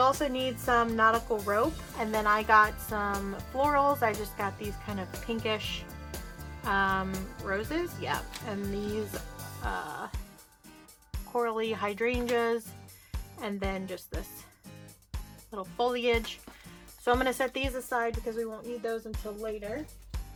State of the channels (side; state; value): both; identical; correlation 1.00